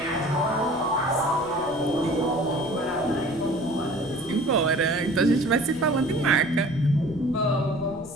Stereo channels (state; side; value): noise; left; rumble, 21 dB below the sound